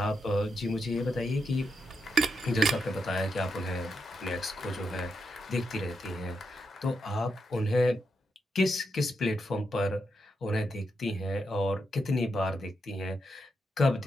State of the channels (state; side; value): normal; both; correlation 0.83